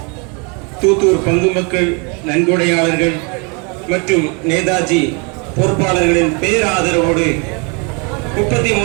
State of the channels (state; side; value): quieter; left; 33.5 dB